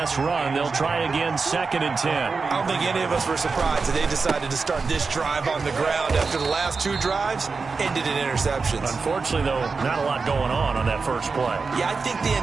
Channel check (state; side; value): quieter; left; 4.6 dB